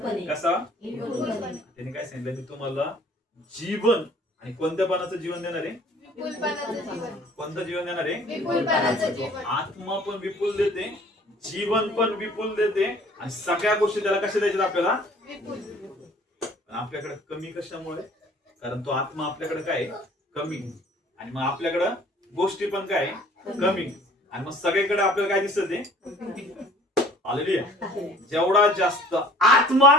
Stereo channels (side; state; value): both; normal; correlation 0.52